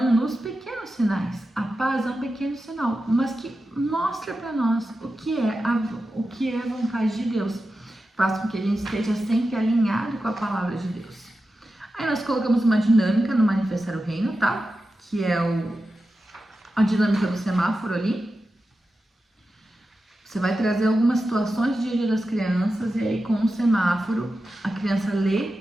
nos pequenos sinais. A paz é um pequeno sinal, mas que mostra para nós o que é a vontade de Deus. Faz com que a gente esteja sempre alinhado com a palavra de Deus. Aí nós colocamos uma dinâmica no Manifestar o Reino, tá? Que é a dinâmica do semáforo ali. Você vai trazer algumas situações do dia a dia das crianças e aí com o semáforo a criança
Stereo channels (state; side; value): normal; both; correlation 0.92